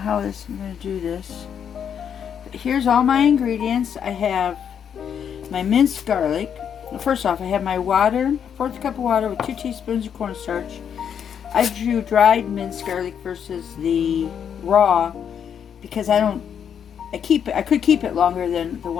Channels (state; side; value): quieter; right; 8.1 dB